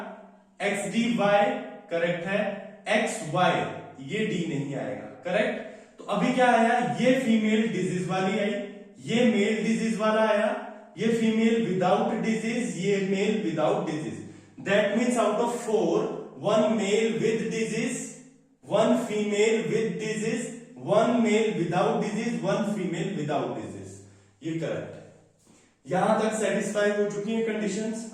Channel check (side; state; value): both; identical; correlation 1.00